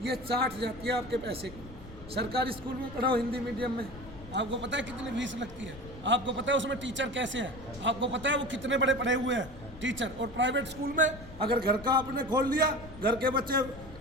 ये चाट जाती है आपके पैसे को। सरकारी स्कूल में पढ़ाओ, हिंदी मीडियम में, आपको पता है कितनी फीस लगती है, आपको पता है उसमें टीचर कैसे हैं, आपको पता है वो कितने बड़े पढ़े हुए हैं टीचर। और प्राइवेट स्कूल में अगर घर का आपने खोल लिया, घर के बच्चे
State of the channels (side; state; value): left; noise; rumble, 16 dB below the sound